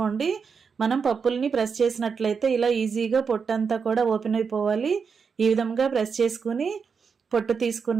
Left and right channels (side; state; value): left; quieter; 5.8 dB